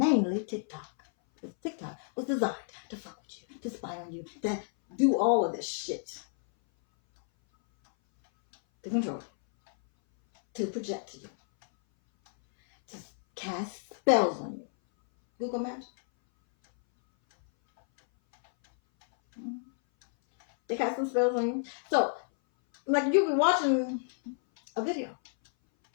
TikTok. Because TikTok was designed to fuck with you, to spy on you, to do all of this shit. To control you. To project you. To cast spells on you. Google Maps. They cast some spells on you. So, you be watching a video.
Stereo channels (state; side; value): silent; right; 58 dB below the other